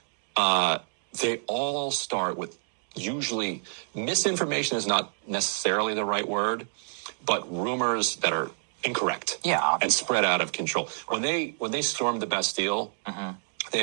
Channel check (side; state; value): left; silent; digital silence